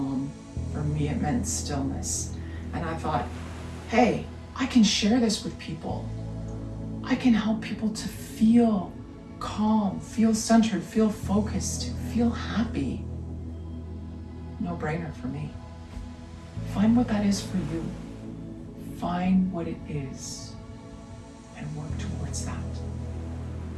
for me it meant stillness. And I thought, hey, I can share this with people. I can help people to feel calm, feel centered, feel focused, feel happy. No brainer for me. Find what that is for you. Find what it is and work towards that.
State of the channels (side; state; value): both; identical; correlation 1.00